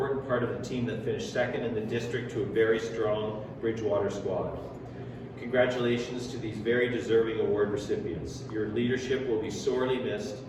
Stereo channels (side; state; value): both; identical; correlation 1.00